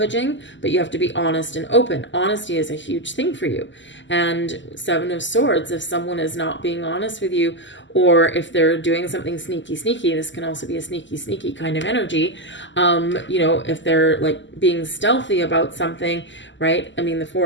but you have to be honest and open. Honesty is a huge thing for you. And Seven of Swords, if someone is not being honest with you, or if they're doing something sneaky, this can also be a sneaky kind of energy. If they're like being stealthy about something, right? I mean, the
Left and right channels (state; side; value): late; right; 0.54 ms